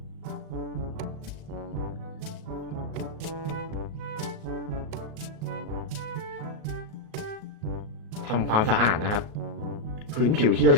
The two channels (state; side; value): late; left; 38 ms